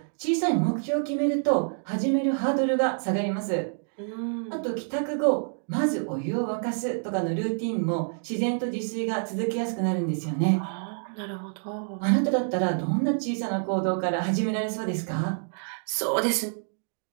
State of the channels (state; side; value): silent; left; digital silence